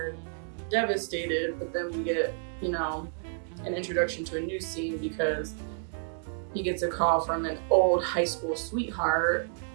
devastated. But then we get, an introduction to a new scene because he gets a call from an old high school sweetheart,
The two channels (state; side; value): silent; left; digital silence